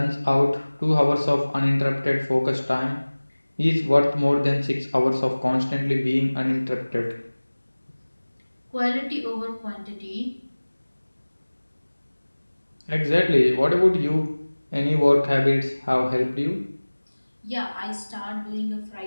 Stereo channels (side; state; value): both; inverted; correlation -1.00